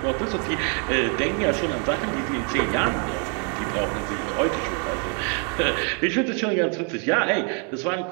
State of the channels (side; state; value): left; quieter; 39.1 dB